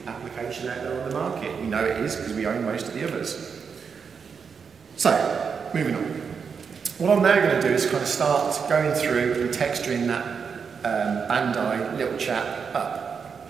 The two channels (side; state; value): left; quieter; 6.1 dB